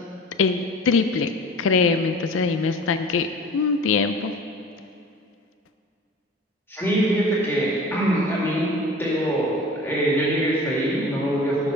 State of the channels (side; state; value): both; normal; correlation 0.41